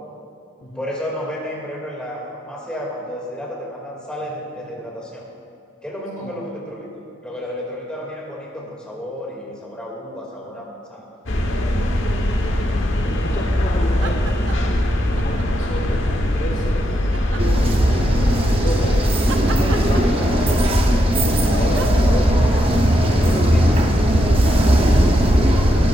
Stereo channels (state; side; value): normal; both; correlation 0.82